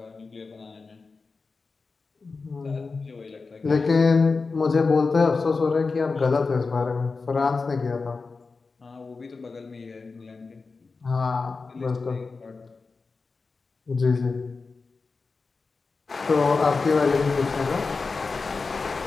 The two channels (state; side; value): quieter; right; 4.3 dB